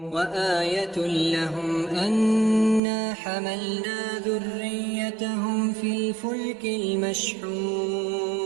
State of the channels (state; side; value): drops out; left; at 2.8 s